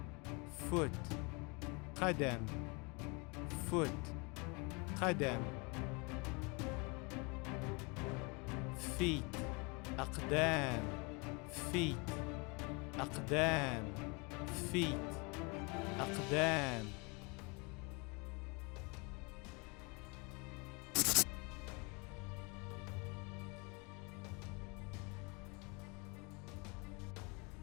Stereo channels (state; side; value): quieter; right; 29.9 dB